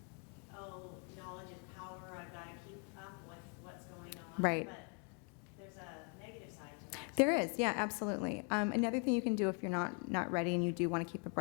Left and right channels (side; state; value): right; quieter; 39.1 dB